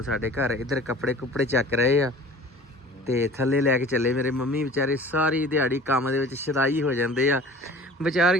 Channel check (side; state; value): both; normal; correlation 0.44